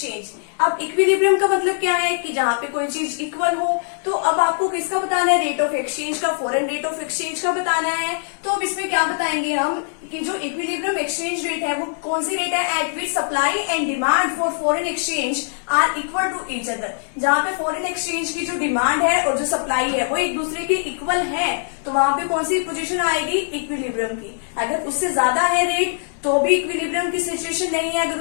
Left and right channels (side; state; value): right; silent; digital silence